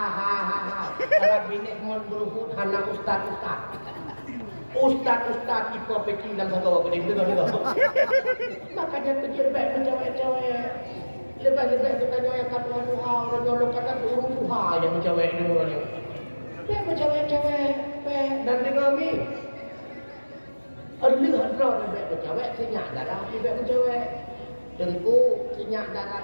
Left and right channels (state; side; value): inverted; both; correlation -1.00